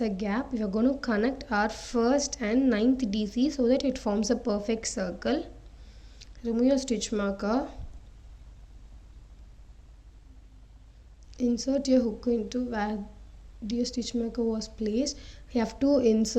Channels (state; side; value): identical; both; correlation 1.00